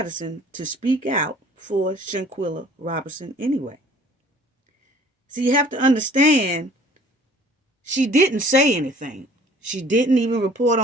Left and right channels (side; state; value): both; normal; correlation 0.53